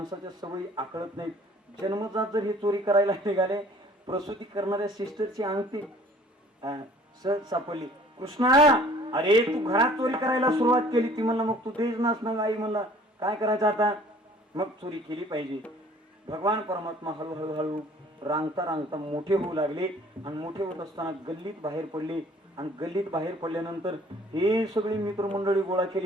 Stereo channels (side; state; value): both; normal; correlation 0.53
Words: सवयी आकळत नाहीत. जन्मजात जर हे चोरी करायला निघाले, प्रसूती करणाऱ्या सिस्टरची अंगठी सहज सापडली. कृष्णा अरे तू घरात चोरी करायला सुरुवात केली. ती म्हणला मग तू देच नास ना. आई म्हणला काय करायचं आता? मग चोरी केली पाहिजे. भगवान परमात्मा हळूहळू रांगता मोठे होऊ लागले आणि मोठे होत असताना गल्लीत बाहेर पडले. आणि गल्लीत बाहेर पडल्यानंतर हे सगळी मित्रमंडळी गोळा